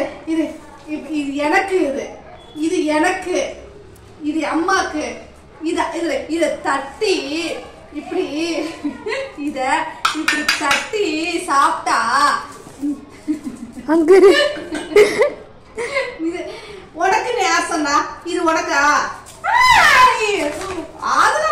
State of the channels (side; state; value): both; identical; correlation 1.00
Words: இது இது எனக்கு, இது எனக்கு, இது அம்மாக்கு. இத தட்டி இப்படி இத இப்படி தட்டி சாப்பிட்டா அங்க இது உனக்கு நேசம்னா இது உனக்கா?